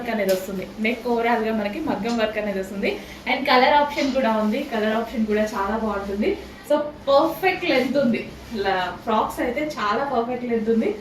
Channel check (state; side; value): identical; both; correlation 1.00